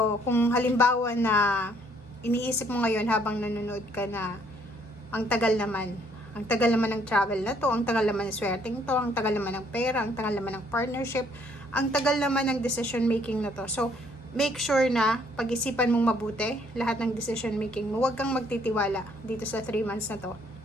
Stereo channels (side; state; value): both; normal; correlation 0.65